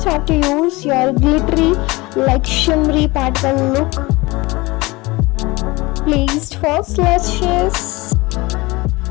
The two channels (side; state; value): right; quieter; 22.8 dB